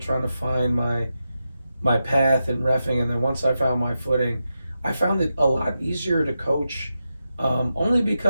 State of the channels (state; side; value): inverted; both; correlation -0.89